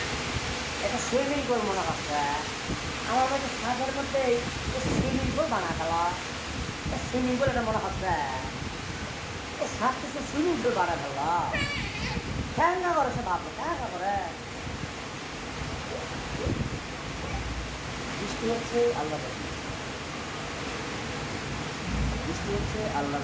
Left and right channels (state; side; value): identical; both; correlation 1.00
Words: এটা সুইমিং পুল মনে হচ্ছে। আমার কাছে সাগরের মধ্যে সুইমিং পুল বানা গেল। সুইমিং পুল এটা মনে হচ্ছে। সাত কিছু সুইমিং পুল বানা গেল। ঠ্যাঙ্গা করে সে ভাবলো, ঠ্যাঙ্গা করে। বৃষ্টি হচ্ছে আল্লাহ, বৃষ্টি হচ্ছে আল্লাহর